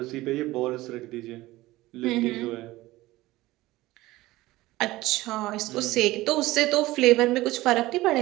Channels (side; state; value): left; quieter; 18.2 dB